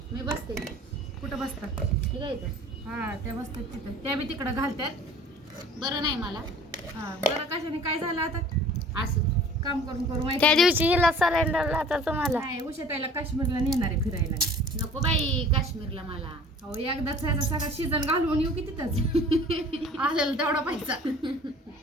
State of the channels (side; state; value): both; normal; correlation 0.48